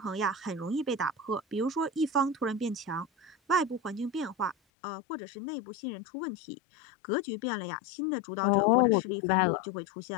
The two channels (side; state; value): right; drops out; at 4.5 s